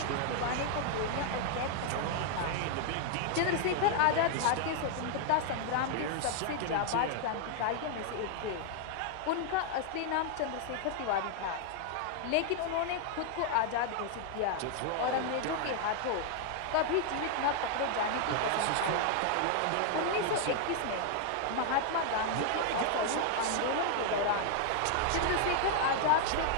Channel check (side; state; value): both; different; correlation 0.00